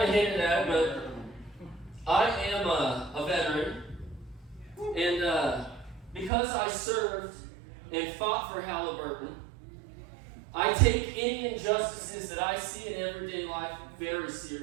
of hinted at it, but I am a veteran. And because I served and fought for Halliburton, I take any injustices that I see in everyday life very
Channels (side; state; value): left; drops out; at 6.3 s